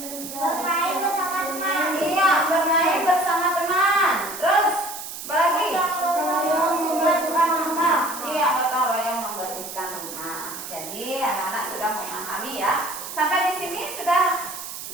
Bermain bersama teman. Iya, bermain bersama teman. Terus apa lagi? Iya, gotong royong membersihkan rumah. Jadi anak-anak sudah memahami ya. Sampai di sini sudah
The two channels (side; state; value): right; noise; hiss, 9 dB below the sound